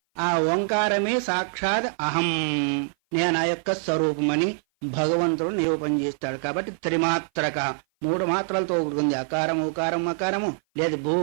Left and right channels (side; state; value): left; silent; 56 dB below the other